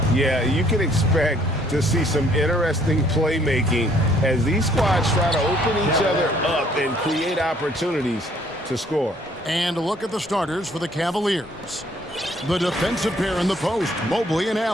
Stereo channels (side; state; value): both; normal; correlation 0.62